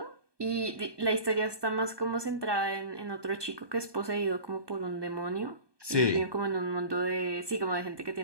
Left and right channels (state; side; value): late; left; 1.2 ms